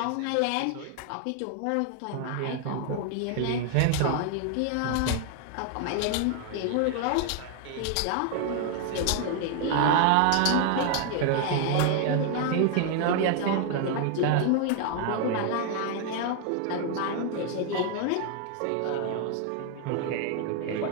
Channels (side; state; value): both; different; correlation 0.00